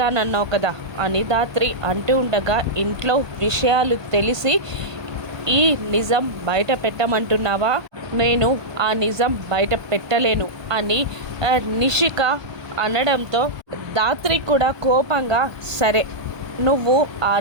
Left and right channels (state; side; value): late; left; 1.2 ms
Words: కదా అని దాత్రి అంటూ ఉండగా ఇంట్లో విషయాలు తెలిసి ఈ నిజం బయట పెట్టమంటున్నావా? నేను ఆ నిజం బయట పెట్టలేను అని నిషిక అనడంతో దాత్రి కూడా కోపంగా సరే నువ్వు ఆ